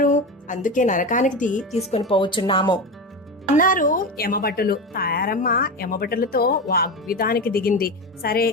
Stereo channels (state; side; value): normal; both; correlation 0.21